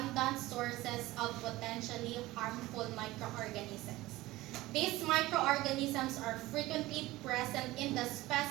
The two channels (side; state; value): left; quieter; 18.2 dB